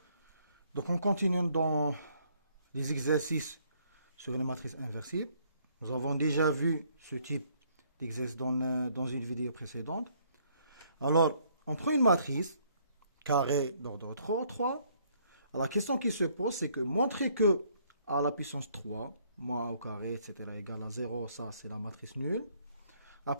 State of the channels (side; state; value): both; inverted; correlation -0.66